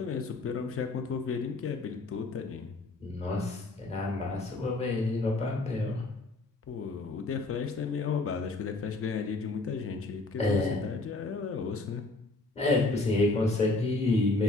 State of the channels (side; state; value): right; quieter; 3.2 dB